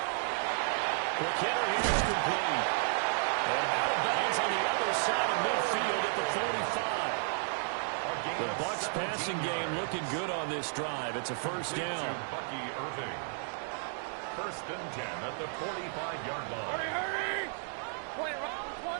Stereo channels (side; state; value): left; silent; 56 dB below the other